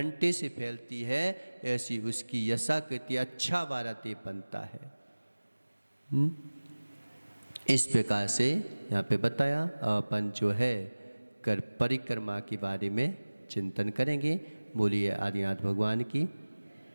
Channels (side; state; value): both; inverted; correlation -1.00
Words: से फैलती है, ऐसी उसकी यशा कीर्ति अच्छा वाला देव बनता है। इस प्रकार से यहाँ पे बताया अपन जो है कर परिक्रमा के बारे में चिंतन करेंगे। बोलिए आदिनाथ भगवान की।